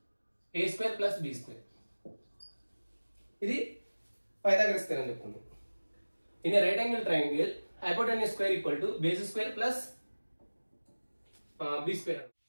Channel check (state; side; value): inverted; both; correlation -1.00